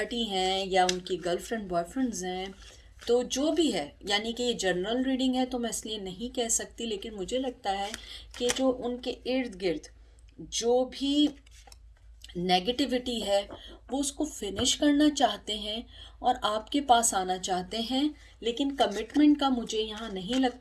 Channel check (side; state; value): both; identical; correlation 1.00